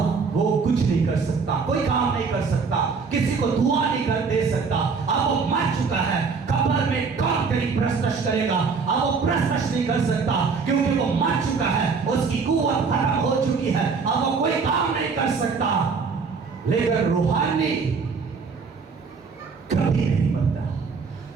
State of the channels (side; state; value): left; quieter; 5.1 dB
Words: वो कुछ नहीं कर सकता, कोई काम नहीं कर सकता, किसी को दुआ नहीं कर दे सकता। अब वो मर चुका है, कब्र में कौन तेरी प्रस्तश करेगा? अब वो प्रस्तश नहीं कर सकता क्योंकि वो मर चुका है, उसकी कुव्वत खत्म हो चुकी है, अब वो कोई काम नहीं कर सकता। लेकिन रूहानी कभी नहीं मरता।